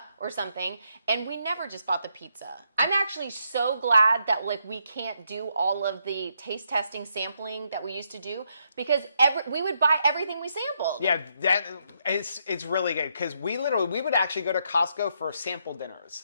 or something, and we never just bought the pizza. I'm actually so glad that like we can't do all of the taste testing sampling that we used to do, because we would buy everything we sampled. Yeah, it's really good, because we would actually go to Costco for sample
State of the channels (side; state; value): both; inverted; correlation -0.77